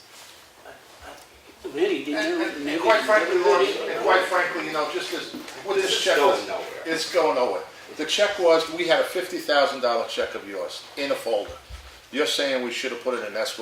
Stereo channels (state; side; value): identical; both; correlation 1.00